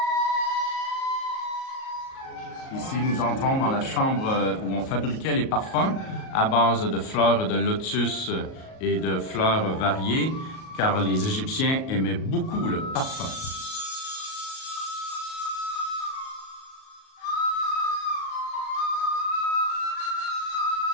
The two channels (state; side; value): late; right; 38 ms